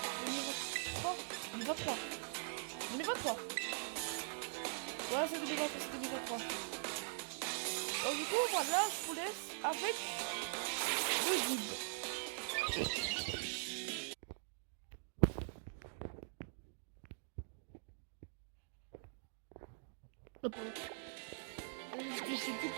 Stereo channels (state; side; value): silent; left; digital silence